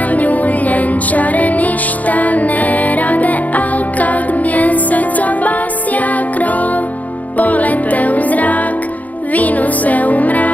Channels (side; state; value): right; late; 0.075 ms